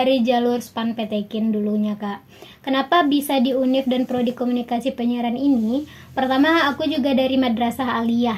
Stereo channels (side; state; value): both; identical; correlation 1.00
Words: jalur SPAN PTKIN dulunya Kak. Kenapa bisa di Univ dan prodi komunikasi penyiaran ini? Pertama aku juga dari madrasah